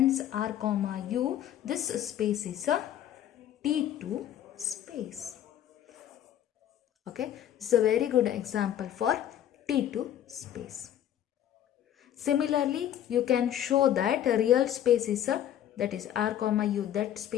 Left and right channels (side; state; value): right; quieter; 11.0 dB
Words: R comma U, this space is a T2 space. Okay, this is a very good example for T2 space. Similarly, you can show that a real space is a, that is R comma U, that